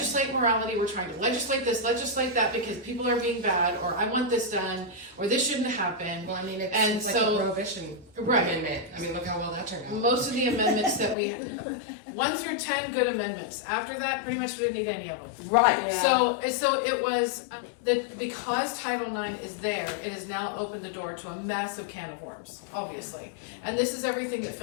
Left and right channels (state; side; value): drops out; right; at 11.2 s